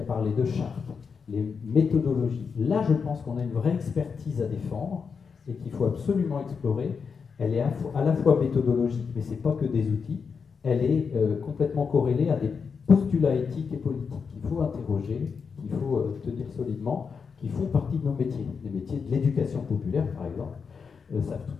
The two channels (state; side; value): quieter; right; 5.8 dB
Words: parlé de charte, les méthodologies. Là, je pense qu'on a une vraie expertise à défendre et qu'il faut absolument explorer. Elle est à la fois méthodologique, mais ce n'est pas que des outils. Elle est complètement corrélée à des postulats éthiques et politiques qu'il faut interroger, qu'il faut tenir solidement, qui font partie de nos métiers. Les métiers de l'éducation populaire, par exemple, savent